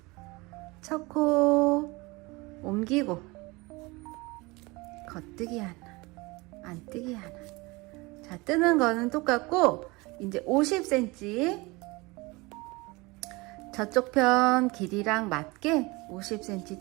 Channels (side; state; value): left; quieter; 24.1 dB